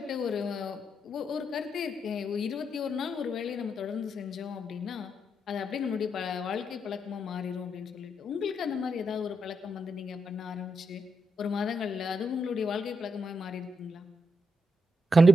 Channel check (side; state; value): both; normal; correlation 0.82